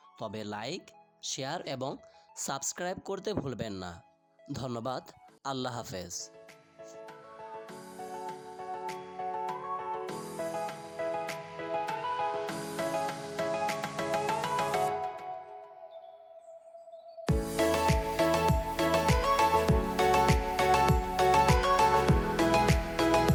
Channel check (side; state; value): both; identical; correlation 1.00